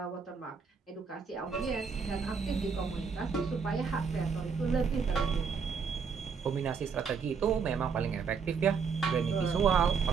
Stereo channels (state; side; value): quieter; left; 5.7 dB